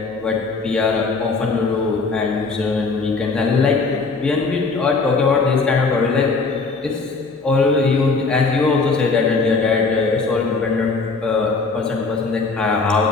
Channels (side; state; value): right; quieter; 4.2 dB